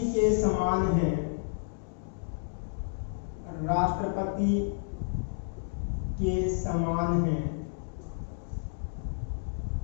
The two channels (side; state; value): right; silent; digital silence